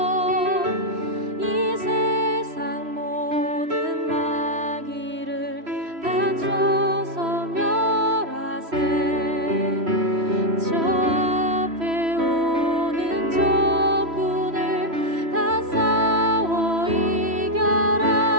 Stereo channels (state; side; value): late; left; 3.1 ms